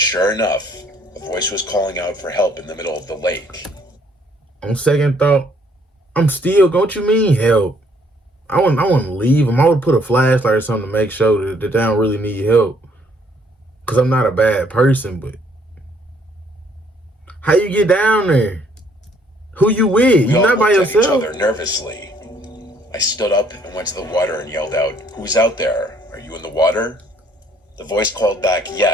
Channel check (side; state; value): both; normal; correlation 0.64